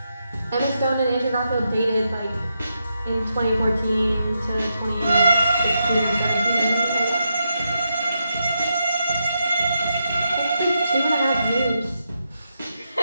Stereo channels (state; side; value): inverted; both; correlation -0.84